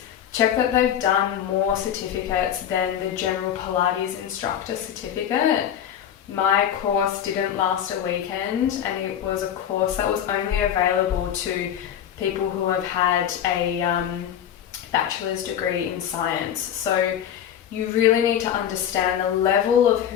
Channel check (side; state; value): right; quieter; 9.8 dB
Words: Check that they've done more certificates than the general Pilates instructor certificate. My course didn't last a weekend, and it was a course that was only available to people who have had a bachelor's degree in science. So you really need to understand the level of